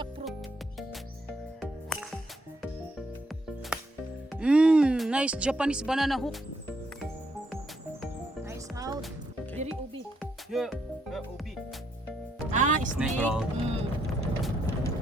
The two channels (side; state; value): both; normal; correlation 0.75